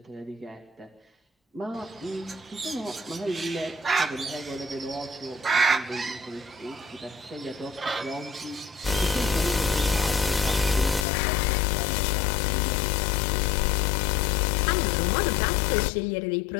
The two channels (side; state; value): right; drops out; at 11.1 s